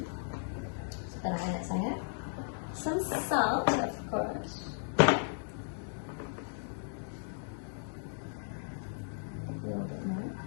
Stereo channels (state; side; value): silent; right; digital silence